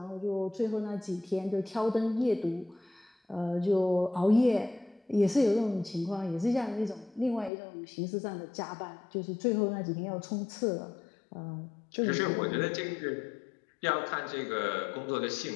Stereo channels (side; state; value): right; drops out; at 7.5 s